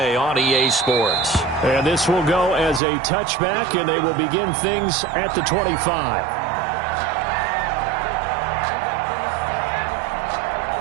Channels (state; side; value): drops out; left; at 2.8 s